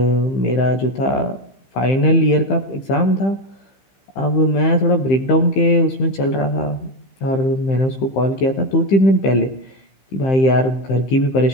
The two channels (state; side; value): late; right; 15 ms